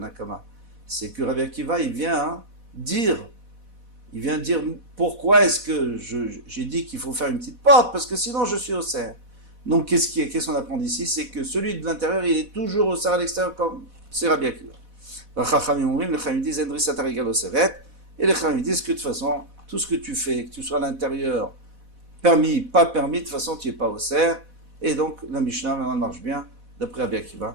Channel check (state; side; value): late; left; 4.1 ms